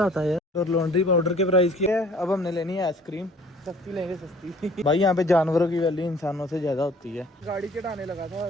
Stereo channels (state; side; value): normal; both; correlation 0.53